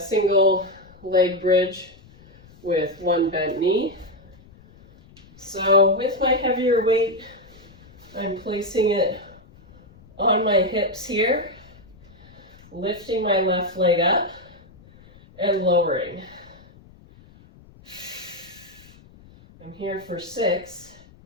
leg bridge with 1 bent knee. So with my heavier weight, I'm placing it on my hips here, lifting my left leg up and lowering. I'm here for 6,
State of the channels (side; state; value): left; noise; rumble, 24 dB below the sound